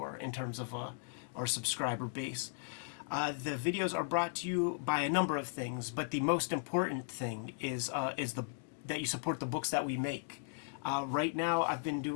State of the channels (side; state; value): right; silent; digital silence